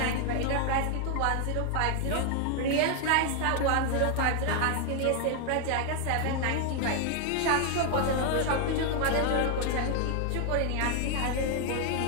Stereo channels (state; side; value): different; both; correlation 0.00